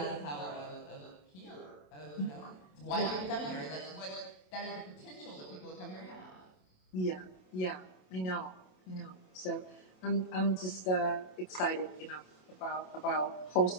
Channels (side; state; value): right; late; 27 ms